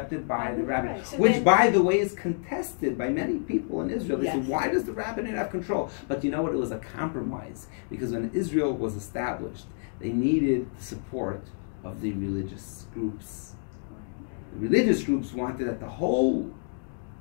by the rabbinate, so which, by the way, is contested by many people in Israel. They say, why does the rabbinate have control? But you know what? It was a compromise, because when Israel was established, they needed the support of the religious groups. The religious groups wanted that the whole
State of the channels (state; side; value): silent; right; digital silence